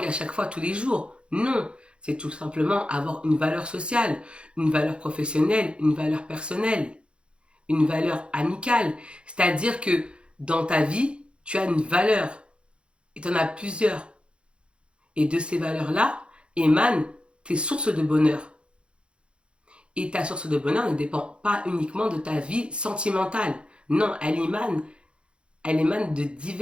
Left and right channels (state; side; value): late; left; 0.057 ms